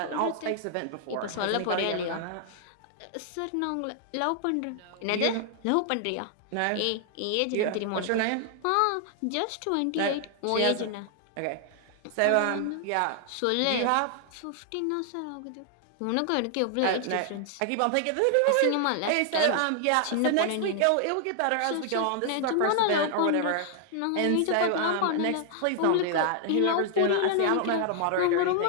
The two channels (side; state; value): both; different; correlation 0.00